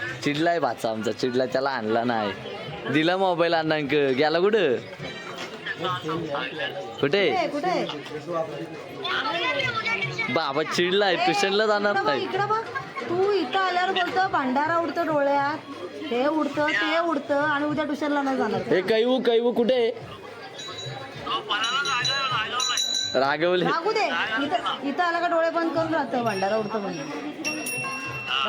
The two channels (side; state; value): both; identical; correlation 1.00